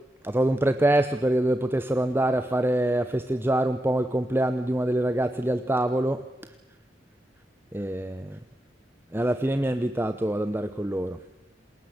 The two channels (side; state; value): both; normal; correlation 0.87